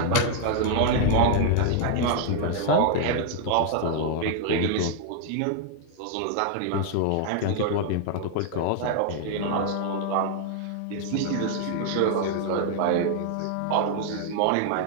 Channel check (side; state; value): both; different; correlation 0.00